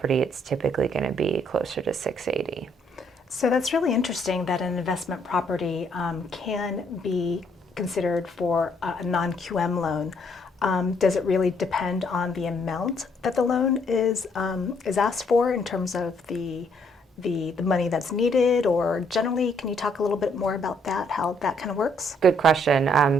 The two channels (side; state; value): both; normal; correlation 0.69